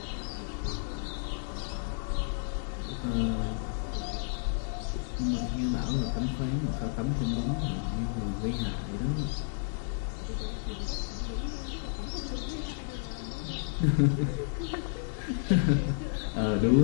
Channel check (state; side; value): silent; right; digital silence